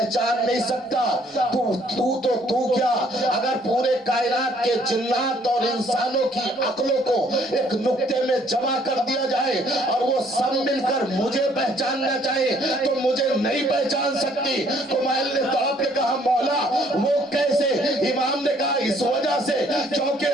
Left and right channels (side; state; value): both; normal; correlation 0.63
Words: نہیں سکتا. تو کیا اگر پورے کائنات کے جنات اور انسانوں کی عقلوں کو ایک نقطے میں جمع کر دیا جائے اور وہ سب مل کر مجھے پہچاننا چاہے تو مجھے نہیں پہچان سکتی. کمیل نے تڑپ کے کہا مولا وہ کیسے؟ امام نے کہا اس وجہ سے کیونکہ